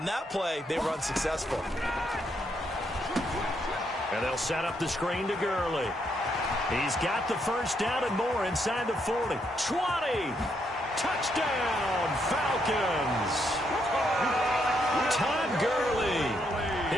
that play, they run successful. And they'll set up the screen to Gurley. He's got the first down and more inside the 40. 20. Touchdown, Falcons. Todd Gurley,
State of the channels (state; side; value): normal; both; correlation 0.76